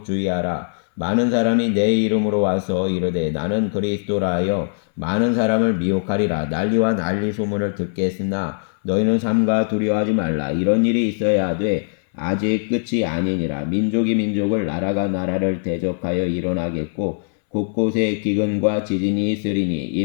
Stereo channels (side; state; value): right; silent; 64 dB below the other